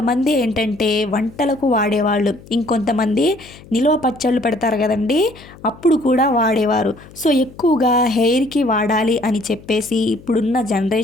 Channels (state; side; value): noise; left; hum, 21 dB below the sound